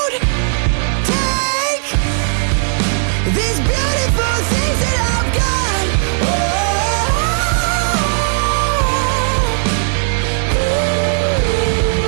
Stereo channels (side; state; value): left; silent; digital silence